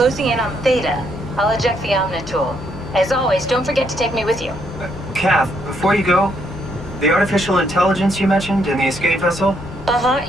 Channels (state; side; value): normal; both; correlation 0.73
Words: in on Theta. I'll eject the Omni tool. As always, don't forget to take me with you. Kath, before you go, the artificial intelligence you mentioned in the escape vessel?